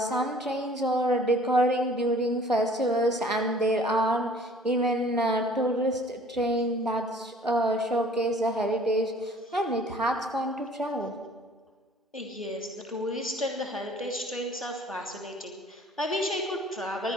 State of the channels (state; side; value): normal; both; correlation 0.53